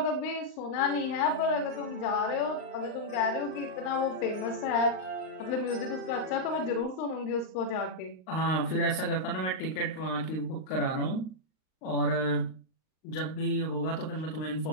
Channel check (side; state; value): right; late; 38 ms